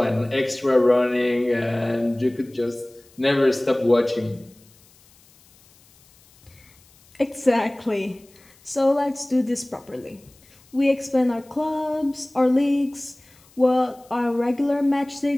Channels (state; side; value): noise; left; hiss, 29 dB below the sound